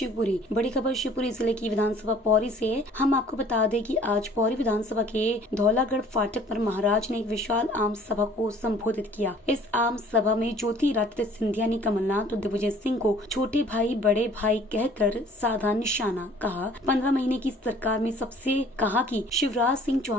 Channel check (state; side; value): normal; both; correlation 0.53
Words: बड़ी खबर शिवपुरी जिले की विधानसभा पौरी से है। हम आपको बता दें कि आज पौरी विधानसभा के धौलागढ़ फाटक पर महाराज ने एक विशाल आम सभा को संबोधित किया। इस आम सभा में ज्योतिरादित्य सिंधिया ने कमलनाथ और दिग्विजय सिंह को छोटे भाई बड़े भाई कहकर साधा निशाना कहा। 15 महीने की सरकार में सबसे कहा कि शिवराज सिंह